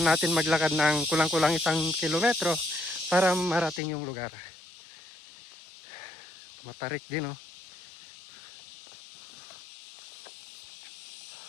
natin maglakad ng kulang-kulang 1 kilometro para marating yung lugar. Matarik din, oh.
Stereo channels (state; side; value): drops out; right; at 3.8 s